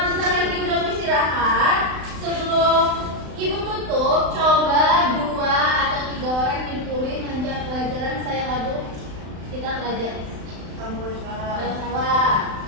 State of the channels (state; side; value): late; left; 35 ms